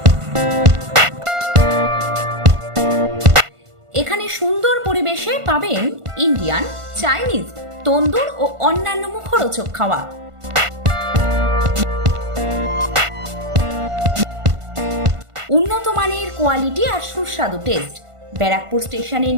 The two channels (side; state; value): left; late; 1.5 ms